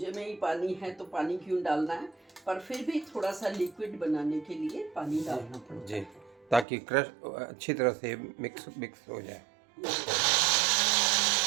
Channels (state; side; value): drops out; left; at 6.7 s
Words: में ही पानी है तो पानी क्यों डालना है, पर फिर भी थोड़ा सा लिक्विड बनाने के लिए पानी डालना पड़ता जी, है। ताकि क्रश अच्छी तरह से मिक्स हो जाए।